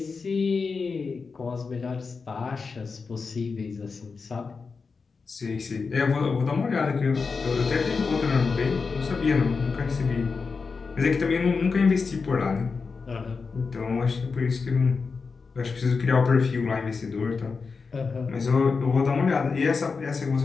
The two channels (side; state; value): right; quieter; 4.8 dB